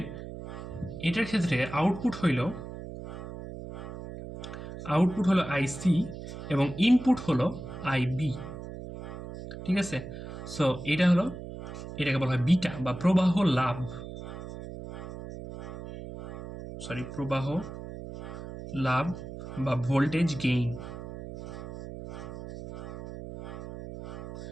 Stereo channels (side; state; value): right; noise; hum, 10 dB below the sound